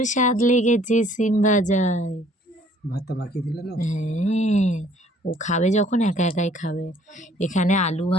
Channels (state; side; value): normal; both; correlation 0.58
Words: স্বাদ লেগেছে সিম ভাজায়। ভাতটা বাকি দিলে না? হ্যাঁ, ও খাবে যখন একা একাই খাবে। এখানে আলু